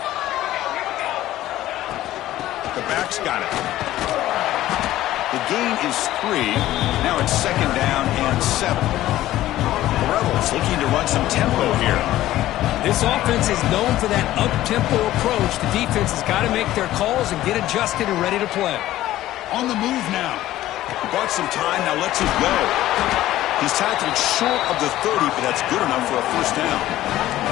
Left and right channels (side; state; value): right; quieter; 14.6 dB